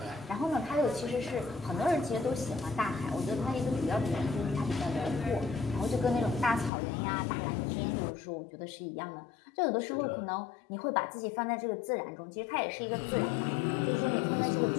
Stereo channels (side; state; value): right; drops out; at 6.7 s